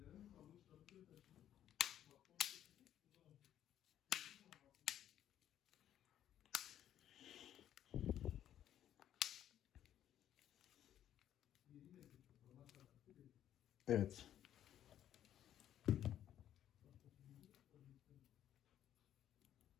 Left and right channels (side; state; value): right; quieter; 11.1 dB